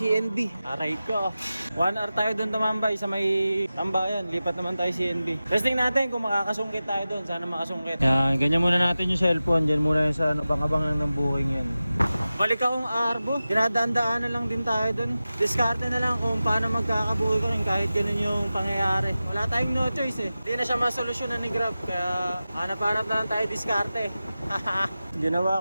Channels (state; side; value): inverted; both; correlation -0.95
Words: Aray ko. 1 hour tayo doon tumambay sa may tambayan. Lipat naman tayo CNB. Testing natin kung makakasungkit tayo doon. Sana makasungkit. Yan, ganyan muna natin yung cellphone. Diyan muna yung sa bang-abang lang ng booking yan. Balik akong Arbo. Dinadaan-daanan lang din tayo doon. Diskarte na lang kung paano magkakabuhay ko rin kahit ganun yung pangyayari. Wala tayong no choice eh. Hindi na siya masolusyonan ni Grab. Kaya hanap-hanap na lang tayo diskarte.